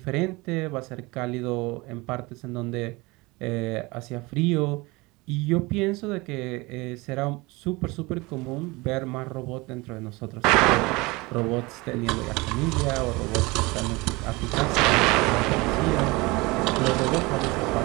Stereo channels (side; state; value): left; quieter; 23.8 dB